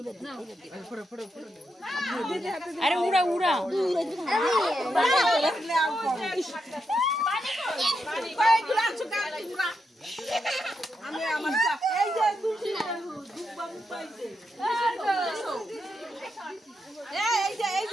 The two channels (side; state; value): both; normal; correlation 0.83